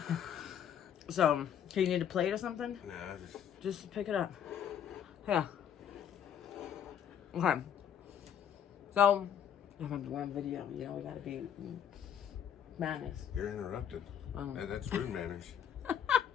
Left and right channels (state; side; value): quieter; right; 9.0 dB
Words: So, do you need a plate or something? Nah, just pick it up. Yeah. Okay. So, I'm doing a video. You know, we gotta be manners. You're interrupted. That's rude manners.